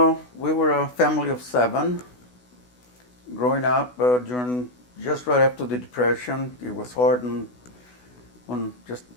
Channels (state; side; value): late; right; 16 ms